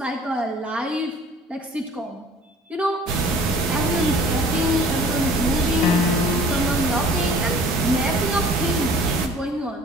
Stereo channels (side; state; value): both; normal; correlation 0.49